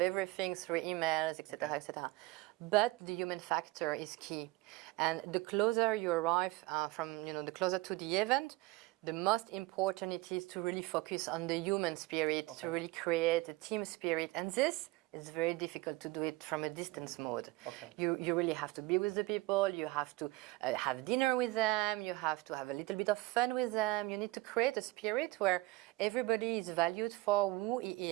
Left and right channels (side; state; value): left; quieter; 20.7 dB